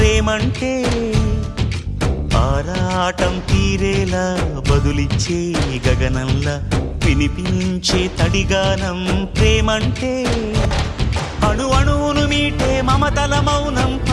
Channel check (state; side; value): identical; both; correlation 1.00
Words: ఆరాటం తీరేలా బదులిచ్చే గగనంలా వినిపించే తడిగానం ప్రేమంటే అణు అణువును మీటే మమతల మౌనం